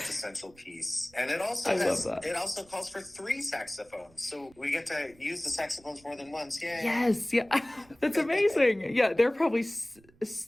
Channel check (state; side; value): noise; right; rumble, 28 dB below the sound